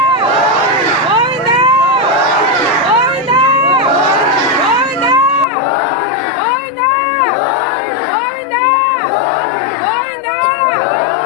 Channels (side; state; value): right; drops out; at 5.5 s